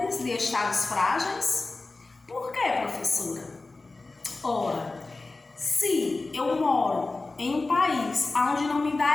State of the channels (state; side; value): quieter; right; 3.4 dB